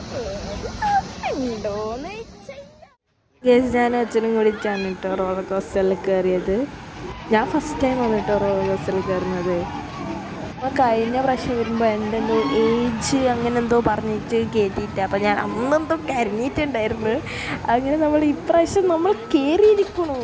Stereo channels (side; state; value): both; identical; correlation 1.00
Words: ഗൈസ് ഞാനും അച്ഛനും കൂടിയിട്ടാണ് കേട്ടോ റോളർ കോസ്റ്ററിൽ കയറിയത്. ഞാൻ ഫസ്റ്റ് ടൈം ആണ് കേട്ടോ റോളർ കോസ്റ്ററിൽ കയറുന്നത്. അപ്പോൾ കഴിഞ്ഞ പ്രാവശ്യം വരുമ്പോൾ എൻ്റെ എന്തോ ഏജ് അങ്ങനെ എന്തോ പറഞ്ഞിട്ട് കയറ്റിയിട്ട് അപ്പോൾ ഞാൻ അന്നെന്തോ കരഞ്ഞിട്ടുണ്ടായിരുന്നു. അങ്ങനെ നമ്മൾ ഇപ്രാവശ്യം നമ്മൾ കയറിയിരിക്കണോ.